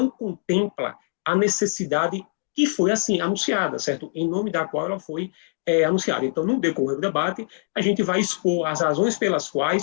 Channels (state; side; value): silent; right; digital silence